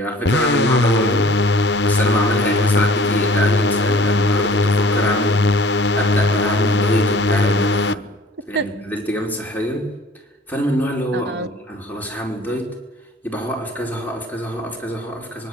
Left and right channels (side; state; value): both; normal; correlation 0.50